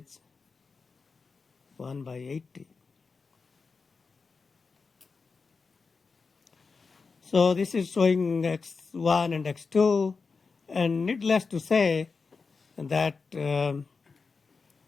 1 by 80. So this is showing x1 and x2, and needless to say that,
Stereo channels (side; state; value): right; quieter; 4.7 dB